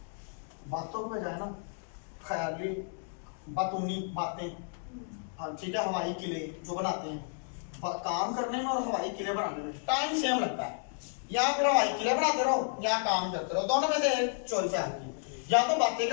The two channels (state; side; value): silent; right; 56 dB below the other